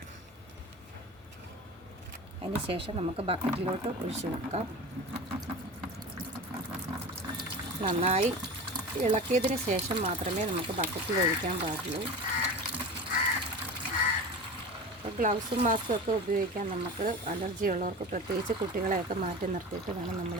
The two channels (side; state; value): both; normal; correlation 0.31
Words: അതിന് ശേഷം നമുക്ക് ബക്കറ്റിലോട്ട് ഒഴിച്ചു വെക്കാം. നന്നായി ഇളക്കിയതിന് ശേഷം മാത്രമേ നമുക്ക് ബക്കറ്റിൽ ഒഴിക്കാൻ പാടുള്ളൂ. അപ്പോൾ ഗ്ലൗസും മാസ്കും ഒക്കെ ഉപയോഗിക്കാൻ നമുക്ക് അലർജി ഉള്ളവർക്ക്, പ്രത്യേകിച്ച് കുട്ടികളെയൊക്കെ മാറ്റി നിർത്തിയിട്ട് വേണം